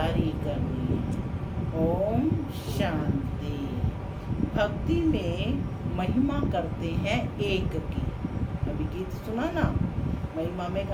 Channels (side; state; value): both; identical; correlation 1.00